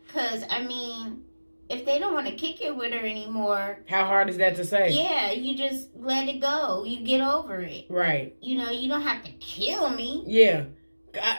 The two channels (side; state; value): both; inverted; correlation -1.00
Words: because, I mean, if they don't want to kick it with her anymore. How hard is that to say? Yeah, you just let it go. You get over it. Right. You know, you don't have to kill me. Yeah.